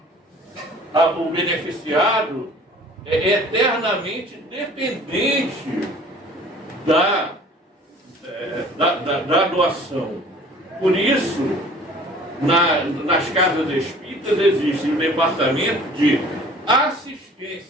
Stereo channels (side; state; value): both; normal; correlation 0.49